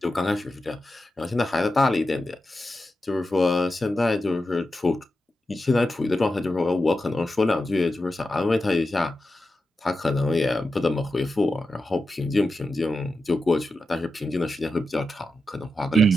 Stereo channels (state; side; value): normal; both; correlation 0.90